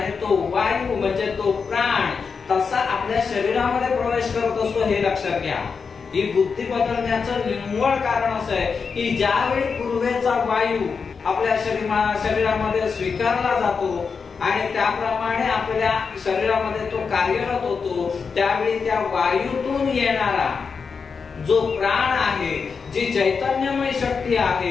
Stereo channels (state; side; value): quieter; right; 5.5 dB